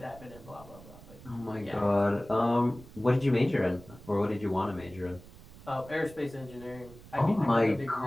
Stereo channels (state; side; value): noise; right; rumble, 19 dB below the sound